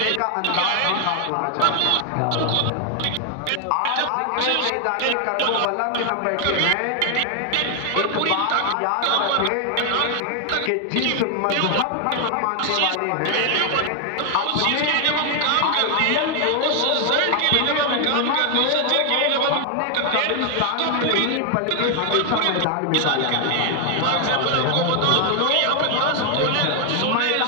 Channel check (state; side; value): different; both; correlation 0.00